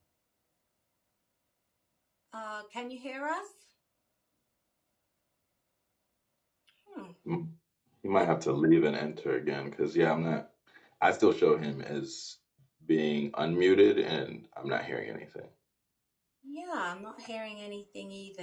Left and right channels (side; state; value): both; identical; correlation 1.00